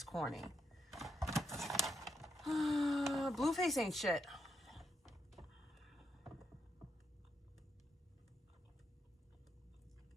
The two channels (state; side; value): normal; both; correlation 0.80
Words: corny. Blueface ain't shit.